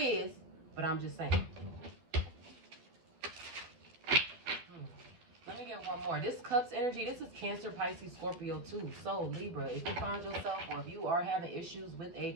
but I'm just saying. Let me get one more. This Cups energy, this is Cancer, Pisces, Scorpio too. So Libra, if you find yourself, or if you are having issues with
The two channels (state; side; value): late; left; 12 ms